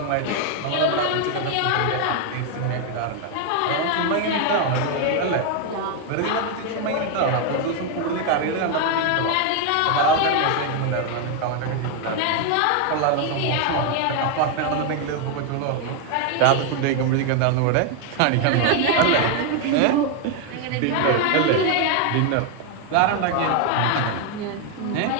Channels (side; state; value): both; different; correlation 0.01